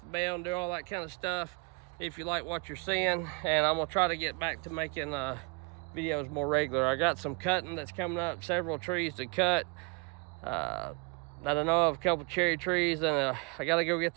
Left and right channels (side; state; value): left; quieter; 32.4 dB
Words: the bell, and do all that kind of stuff if you like what you're seeing. And I'm gonna try to get back to making videos more regular. I got some cutting that's coming up, several trees to cut that I know of, a couple cherry trees, and I gotta go get